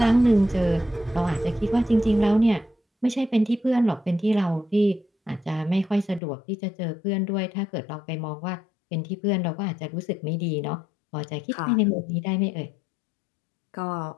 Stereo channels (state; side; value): drops out; right; at 6.2 s